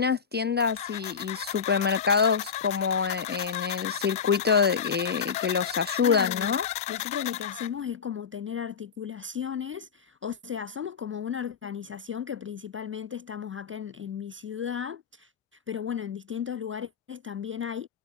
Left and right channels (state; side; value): quieter; right; 6.5 dB